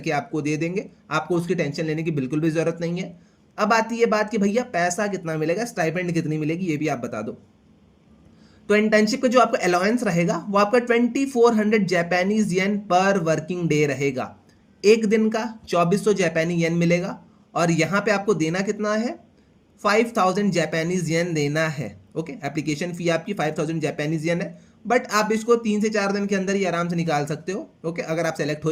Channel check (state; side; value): identical; both; correlation 1.00